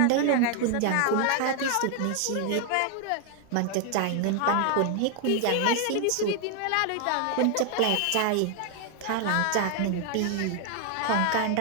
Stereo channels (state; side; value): different; both; correlation 0.00